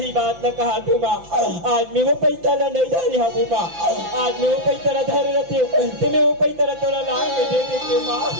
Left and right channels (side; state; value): left; late; 5.9 ms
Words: बात न कहा तू माँ आज मैं वो पैसा ला नहीं धरी हूँ माँ आज मैं वो पैसा ला धरे रहती हूँ तो मैं वो पैसा ला थोड़ा ला के दे देती हूँ माँ